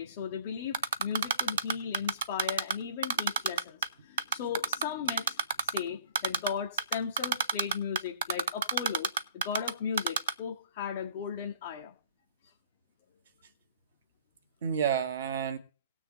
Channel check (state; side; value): inverted; both; correlation -0.55